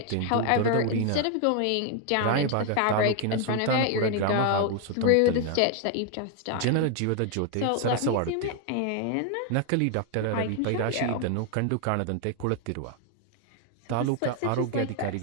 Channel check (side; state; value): both; different; correlation 0.01